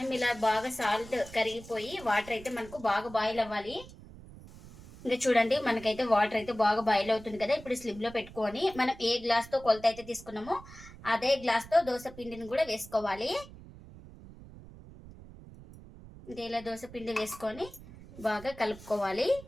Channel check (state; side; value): noise; right; rumble, 18 dB below the sound